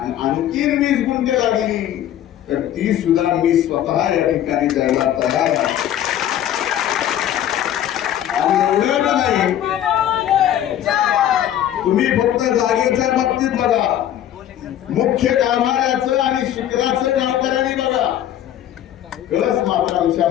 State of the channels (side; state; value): right; quieter; 11.3 dB